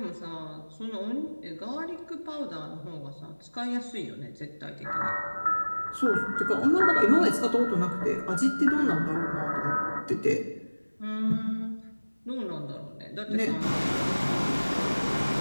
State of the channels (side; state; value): both; inverted; correlation -1.00